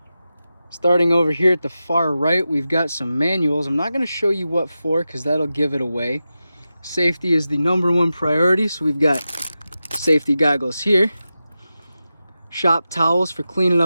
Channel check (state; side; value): inverted; both; correlation -0.92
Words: Starting over here at the far right, we've got some manuals. I'm not going to show you what for because that'll give it away. Safety is the #1 priority, so we've got safety goggles here, shop towels for cleaning